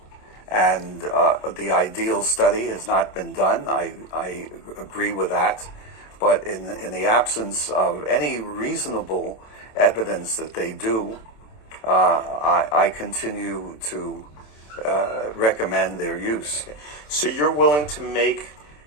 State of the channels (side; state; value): right; late; 27 ms